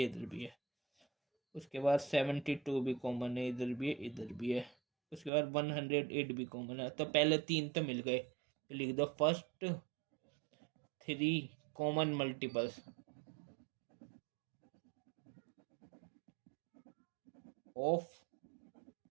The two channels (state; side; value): drops out; left; at 5.3 s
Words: इधर भी है। उसके बाद 72 भी कॉमन है, इधर भी है इधर भी है। उसके बाद 108 भी कॉमन है। तो पहले 3 तो मिल गए, तो लिख दो first 3 common multiples of